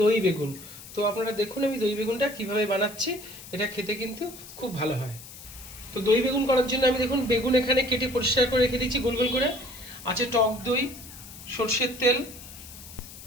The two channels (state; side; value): noise; left; hiss, 16 dB below the sound